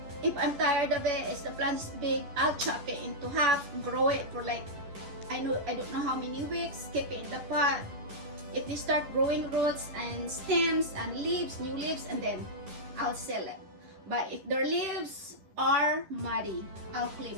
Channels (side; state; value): left; late; 11 ms